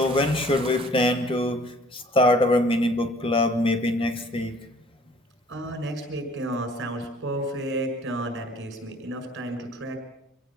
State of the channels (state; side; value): normal; both; correlation 0.54